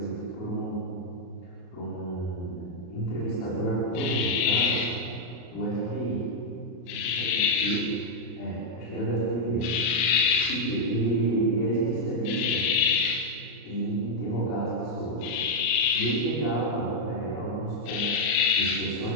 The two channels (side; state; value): right; late; 34 ms